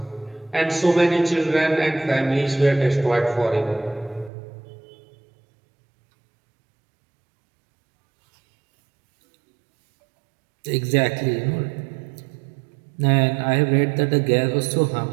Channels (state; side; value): drops out; left; at 4.3 s